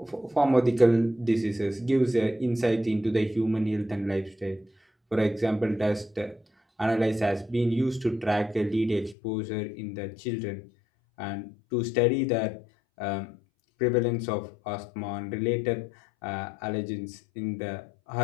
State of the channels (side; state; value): right; drops out; at 9.2 s